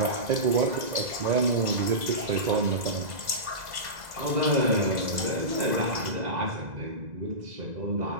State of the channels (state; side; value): late; left; 2.0 ms